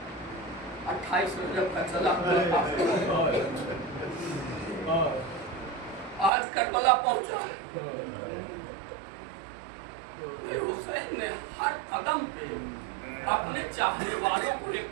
28 رجب کا چلا آج کربلا پہنچا ہے۔ حسین نے ہر قدم پہ اپنے چاہنے والوں کو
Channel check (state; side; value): drops out; left; at 6.3 s